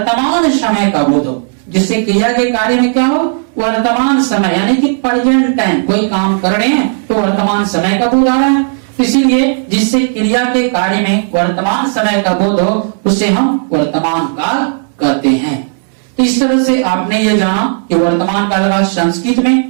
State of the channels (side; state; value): left; silent; digital silence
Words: समय का बोध हो। जिससे क्रिया के कार्य में क्या हो? वर्तमान समय, यानी कि प्रेजेंट टाइम। कोई काम कर रहे हैं तो वर्तमान समय का बोध आ रहा है, इसीलिए जिससे क्रिया के कार्य में वर्तमान समय का बोध हो उसे हम वर्तमान काल कहते हैं। तो इस तरह से आपने ये जाना कि वर्तमान काल का संस्कृत